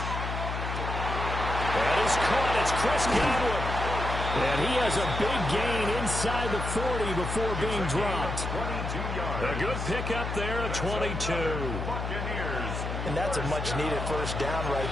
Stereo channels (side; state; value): left; noise; hum, 4 dB below the sound